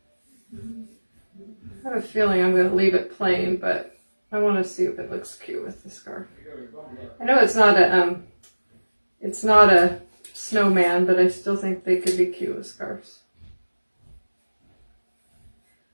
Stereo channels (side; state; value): both; inverted; correlation -1.00